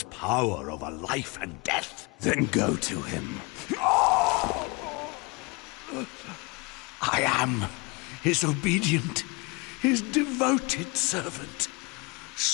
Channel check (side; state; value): right; quieter; 27.9 dB